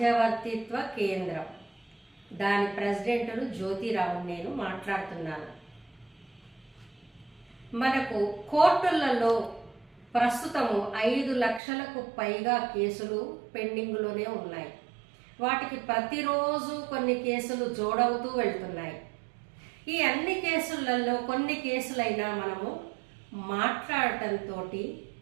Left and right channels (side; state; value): left; drops out; at 11.6 s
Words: కేంద్రం. దాని ప్రెసిడెంట్ను జ్యోతిరావు నేను మాట్లాడుతున్నాను. మనకు కోర్టులలో ప్రస్తుతము 5 లక్షలకు పైగా కేసులు పెండింగ్లోనే ఉన్నాయి. వాటికి ప్రతిరోజు కొన్ని కేసులు జోడవుతూ వెళ్తున్నాయి. ఈ అన్ని కేసులలో కొన్ని కేసులైనా మనము మాట్లాడటంతో,